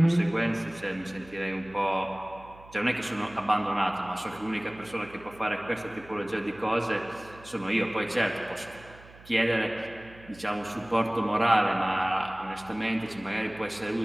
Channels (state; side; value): noise; right; hum, 21 dB below the sound